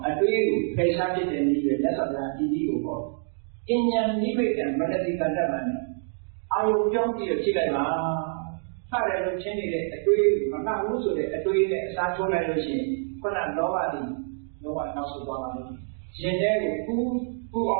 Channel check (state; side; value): silent; left; digital silence